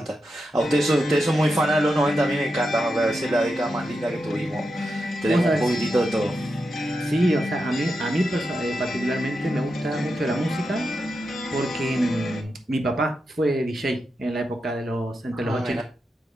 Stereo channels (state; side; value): normal; both; correlation 0.87